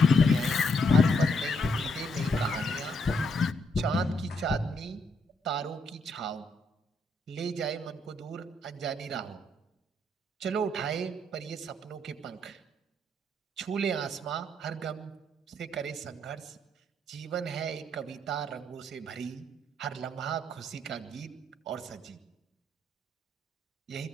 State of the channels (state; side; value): normal; both; correlation 0.74